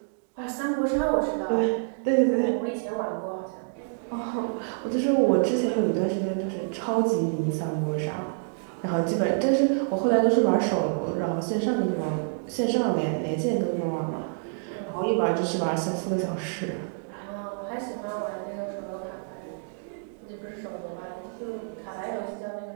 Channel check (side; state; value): left; silent; digital silence